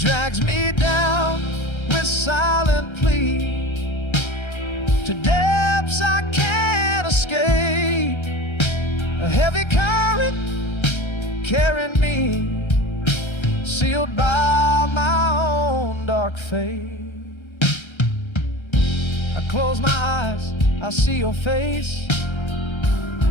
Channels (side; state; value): right; late; 1.3 ms